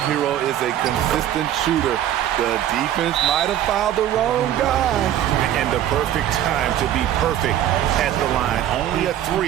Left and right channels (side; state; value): left; quieter; 11.6 dB